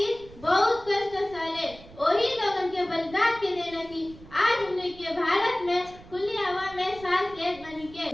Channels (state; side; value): noise; right; rumble, 20 dB below the sound